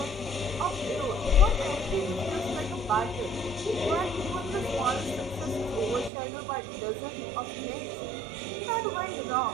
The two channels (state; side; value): drops out; left; at 6.1 s